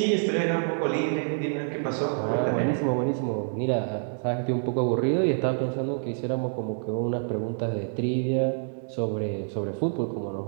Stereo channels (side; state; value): left; silent; digital silence